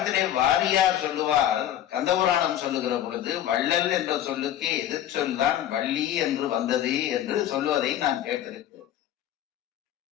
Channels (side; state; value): right; quieter; 11.6 dB